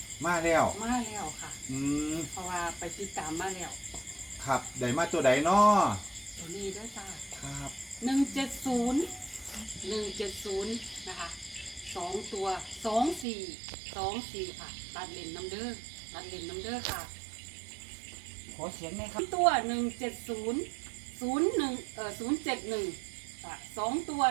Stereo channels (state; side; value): drops out; left; at 13.2 s